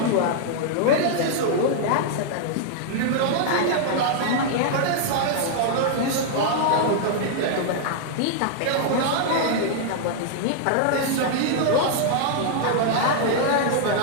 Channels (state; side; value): different; both; correlation -0.01